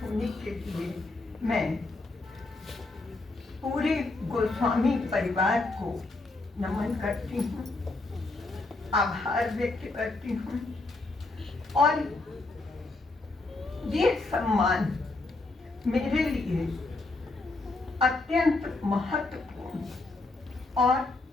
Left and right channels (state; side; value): quieter; right; 3.2 dB